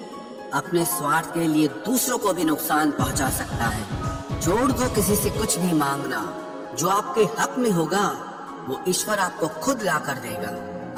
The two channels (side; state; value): both; identical; correlation 1.00